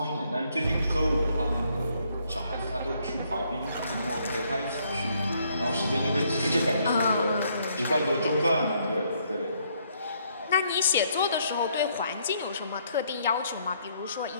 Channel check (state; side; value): inverted; both; correlation -0.70